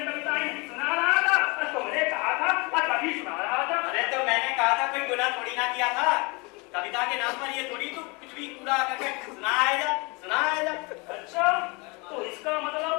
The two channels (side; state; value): right; quieter; 28.4 dB